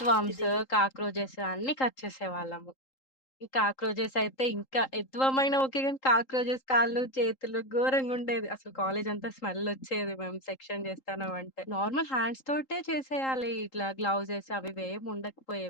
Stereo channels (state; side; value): late; right; 3.8 ms